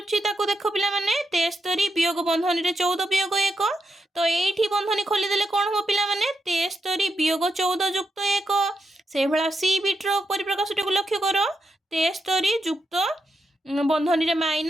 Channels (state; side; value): normal; both; correlation 0.84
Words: ताको देखो पिला माने 73 वियोग बंधनी रे 14 वियोग 1 तो एठी बंधनी खोलदेले कौन हो पिला माने 73 वियोग 14 जुक्त 1 से भला सी बिट्रो परिप्रकाश को लक्ष्य करो 73 जुक्त बंधनी रे